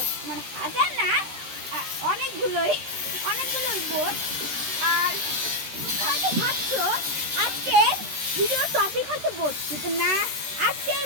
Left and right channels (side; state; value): left; late; 13 ms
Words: মানে হাজার না, অনেকগুলোই বোট। আর তোমরা হয়তো ভাবছো আজকের ভিডিওর টপিক হচ্ছে বোট, কিন্তু না, আজকের